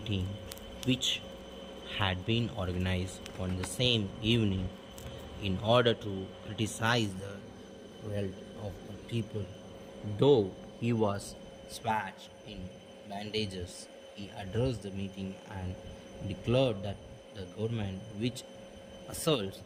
which had been organized on the same evening in order to criticize the cruelty of the people. Though he was swathed in bandages, he addressed the meeting and declared that the government, which assaults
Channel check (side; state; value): both; identical; correlation 1.00